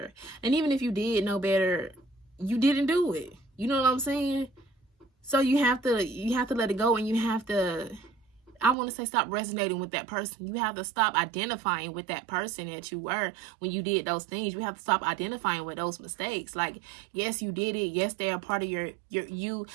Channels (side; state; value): left; drops out; at 8.8 s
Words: and even if you did know better, you didn't do it. You know what I'm saying? So you have to let it go, and you have to, I want to say, stop resonating with that person. You have to stop identifying with that person that you were when you did those things. You have to stop identifying with those mistakes. Like, yes, you did it. Yes, they are part of your you,